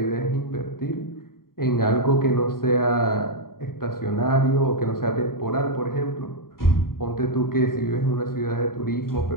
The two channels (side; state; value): right; late; 0.93 ms